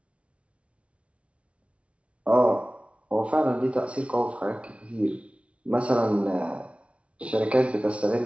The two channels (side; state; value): left; late; 0.062 ms